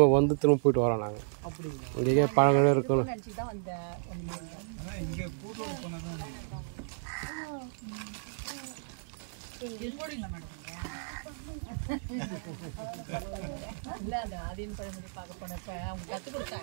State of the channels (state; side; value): silent; left; digital silence